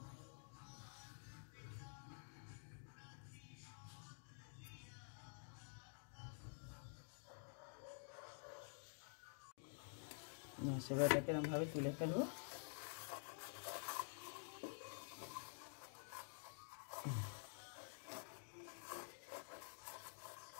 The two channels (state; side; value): silent; right; digital silence